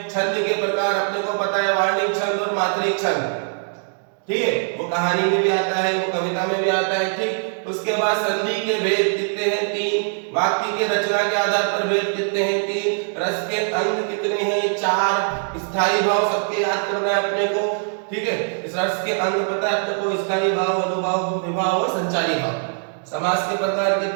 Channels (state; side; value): silent; left; 57 dB below the other